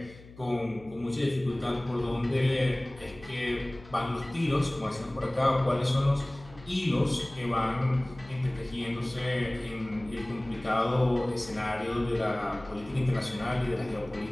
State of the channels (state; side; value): noise; left; hum, 20 dB below the sound